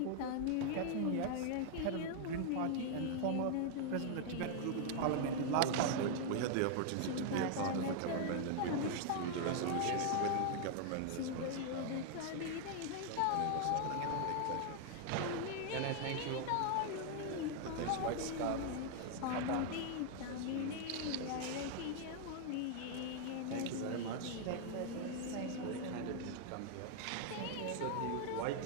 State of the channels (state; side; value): different; both; correlation 0.00